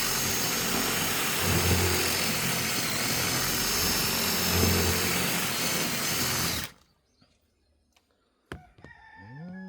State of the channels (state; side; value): identical; both; correlation 1.00